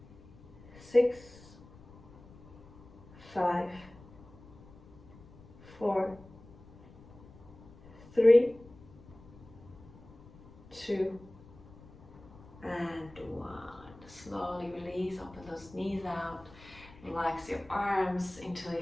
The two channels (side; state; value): left; noise; rumble, 21 dB below the sound